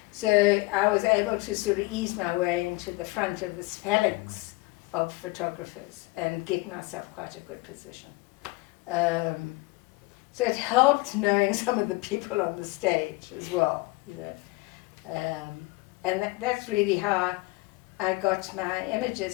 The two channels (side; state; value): right; quieter; 22.9 dB